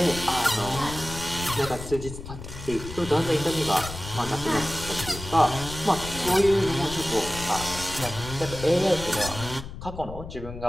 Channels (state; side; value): noise; left; rumble, 10 dB below the sound